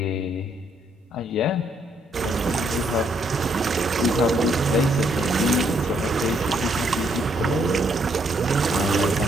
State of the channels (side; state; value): both; normal; correlation 0.72